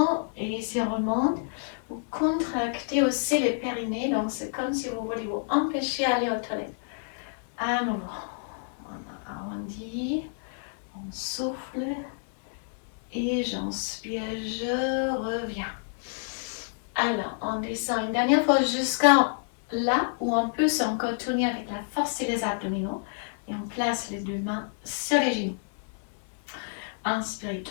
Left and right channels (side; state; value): right; silent; 59 dB below the other